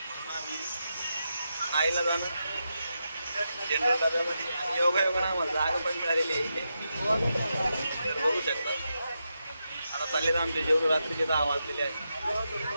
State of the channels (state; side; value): inverted; both; correlation -0.86